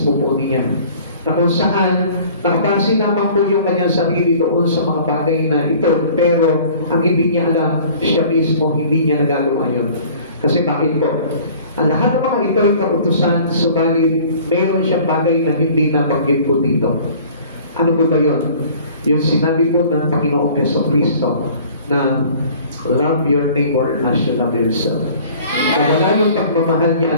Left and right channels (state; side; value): inverted; both; correlation -0.49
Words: po niya. Na kung saan nakabase naman po yung kanyang sarili doon sa mga bagay na ito, pero ang hindi niya alam, siya mismo hindi niya nagagawa yun. Kasi bakit po? Ang lahat ng mga ito ay kautusan, subalit meron siyang bagay na hindi nabanggit po dito. Ano po ba yun? Yung sinabi po ng Panginoong Jesucristo na love your neighbor as you love yourself. Nawala yung pagmamahal